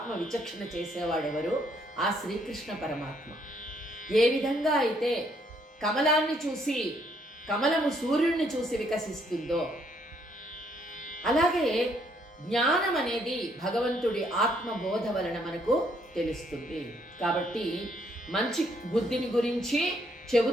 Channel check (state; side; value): normal; both; correlation 0.69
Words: విచక్షణ చేసేవాడు ఎవరు? ఆ శ్రీకృష్ణ పరమాత్మ. ఏ విధంగా అయితే కమలాన్ని చూసి, కమలము సూర్యుడిని చూసి వికసిస్తుందో, అలాగే జ్ఞానం అనేది భగవంతుడి ఆత్మబోధ వలన మనకు తెలుస్తుంది. కాబట్టి మంచి బుద్ధిని గురించి